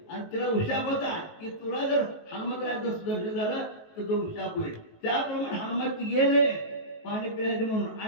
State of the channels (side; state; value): right; late; 19 ms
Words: आणि तिला उशाप होता की तुला जर हनुमंताचं दर्शन झालं तर तो उशाप होईल. त्याप्रमाणे हनुमंत गेले पाणी पिण्याचे म्हणून,